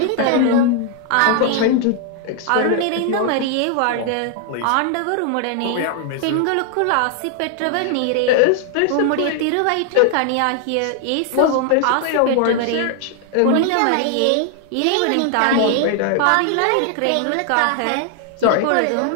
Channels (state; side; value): different; both; correlation 0.00